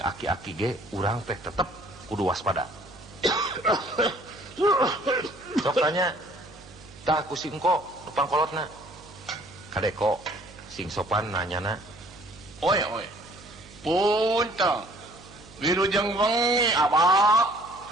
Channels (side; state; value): right; noise; hum, 21 dB below the sound